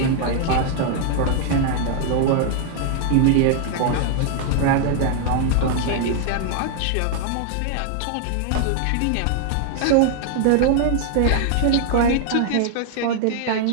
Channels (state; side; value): different; both; correlation 0.00